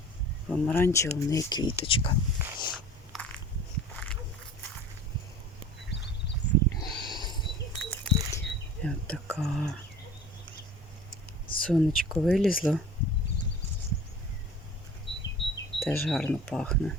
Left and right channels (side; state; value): both; normal; correlation 0.42